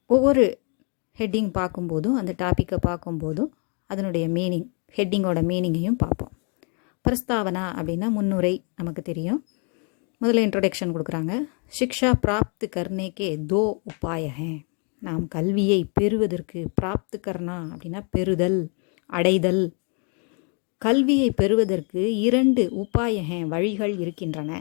ஒவ்வொரு ஹெட்டிங் பார்க்கும்போதும் அந்த டாப்பிக்கை பார்க்கும்போதும் அதனுடைய மீனிங், ஹெட்டிங்கோட மீனிங்கையும் பார்ப்போம். பிரஸ்தாவனா அப்படின்னா முன்னுரை நமக்கு தெரியும். முதல்ல இன்ட்ரோடக்ஷன் கொடுக்குறாங்க. சிக்ஷா பிராப்த் கர்னேக்கே தோ உபாய ஹே. நாம் கல்வியை பெறுவதற்கு பிராப்த் கர்னா அப்படின்னா பெறுதல், அடைதல். கல்வியை பெறுவதற்கு 2 உபாய ஹே வழிகள் இருக்கின்றன.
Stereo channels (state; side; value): quieter; right; 38.0 dB